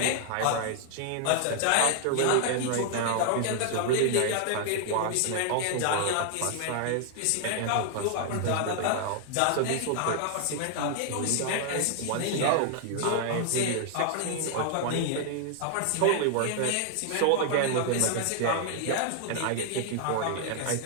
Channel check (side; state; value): both; different; correlation 0.00